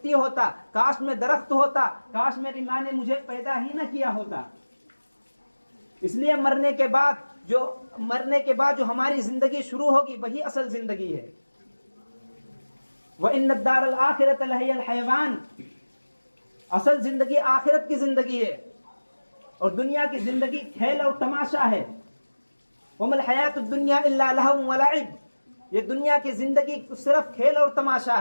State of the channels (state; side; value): inverted; both; correlation -1.00